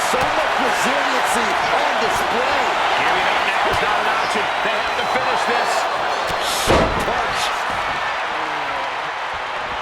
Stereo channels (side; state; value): both; identical; correlation 1.00